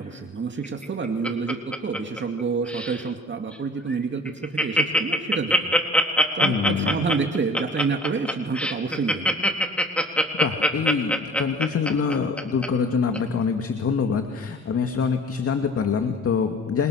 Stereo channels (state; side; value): normal; both; correlation 0.47